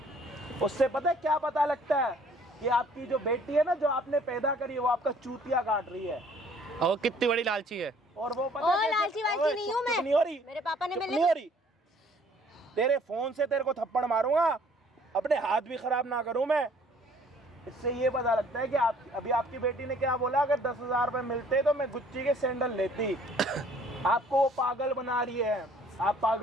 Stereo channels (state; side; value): normal; both; correlation 0.58